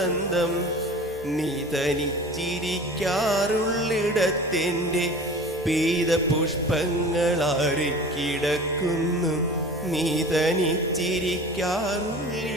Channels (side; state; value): both; normal; correlation 0.40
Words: നീ തനിച്ചിരിക്കാറുള്ളിടത്തെൻ്റെ പെയ്ത പുഷ്പങ്ങളാറിക്കിടക്കുന്നു. നീ